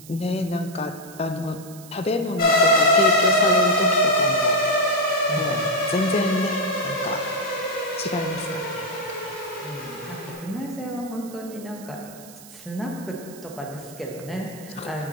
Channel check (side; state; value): right; noise; hiss, 19 dB below the sound